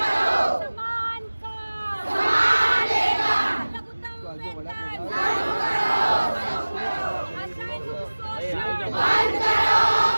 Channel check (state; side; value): inverted; both; correlation -1.00